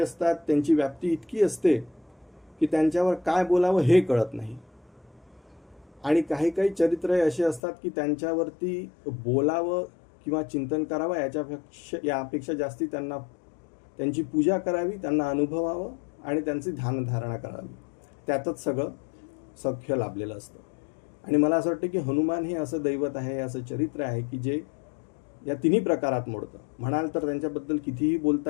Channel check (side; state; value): right; drops out; at 7.6 s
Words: असतात त्यांची व्याप्ती इतकी असते की त्यांच्यावर काय बोलावं हे कळत नाही. आणि काही काही चरित्र असे असतात की त्यांच्यावरती बोलावं किंवा चिंतन करावं यापेक्षा जास्ती त्यांची पूजा करावी, त्यांना अनुभवावं आणि त्यांची ध्यानधारणा करावी, त्यातच सगळं सख्य लाभलेलं असतं. आणि मला असं वाटतं की हनुमान हे असं दैवत आहे, असं चरित्र आहे की जे या तिन्ही प्रकारात मोडतं. म्हणाल तर त्यांच्याबद्दल कितीही